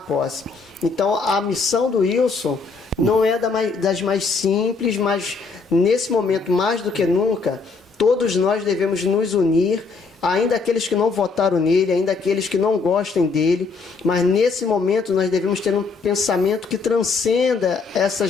posse. Então, a missão do Wilson não é das mais simples, mas nesse momento, mais do que nunca, todos nós devemos nos unir, ainda aqueles que não votaram nele, ainda aqueles que não gostem dele, mas nesse momento nós devemos ter um pensamento que transcenda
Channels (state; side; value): quieter; right; 4.5 dB